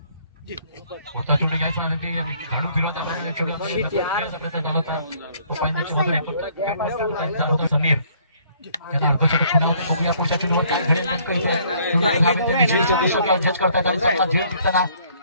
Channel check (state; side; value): inverted; both; correlation -0.62